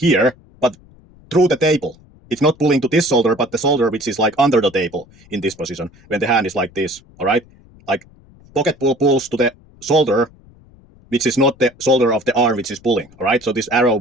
but through the table. It's not pulling to this shoulder, but the shoulder which is like under the table in this position when the hand is like this, all right? Like pocket pull pulls to the shoulder, which is not the shoulder of the arm which is pulling, all right? So this arrow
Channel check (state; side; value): noise; left; rumble, 27 dB below the sound